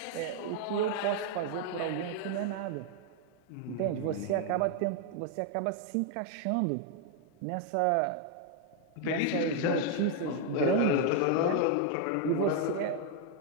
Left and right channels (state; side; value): different; both; correlation 0.00